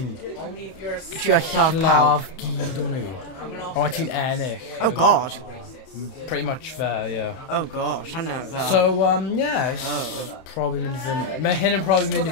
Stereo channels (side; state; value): right; late; 31 ms